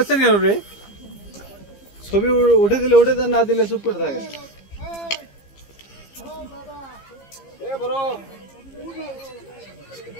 কেন রে ছবি উঠে দিলে উঠে দেন না দিলে চুপ করে থাকে এ বড়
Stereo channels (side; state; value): right; late; 15 ms